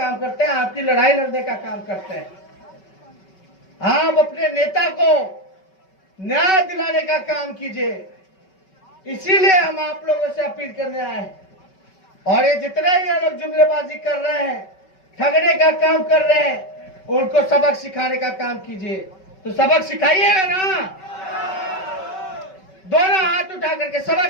करते हैं, आपकी लड़ाई लड़ने का काम करते हैं। आप अपने नेता को न्याय दिलाने का काम कीजिए, इसीलिए हम आप लोगों से अपील करने आए हैं। और ये जितने ही लोग जुमलेबाजी कर रहे हैं, ठगने का काम कर रहे हैं, उनको सबक सिखाने का काम कीजिए। तो सबक सिखाइएगा ना, दोनों हाथ उठा करके सबक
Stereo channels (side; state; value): right; late; 5.3 ms